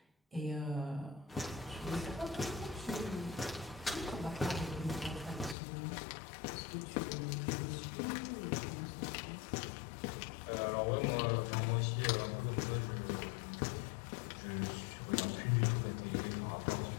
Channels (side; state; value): right; drops out; at 5.6 s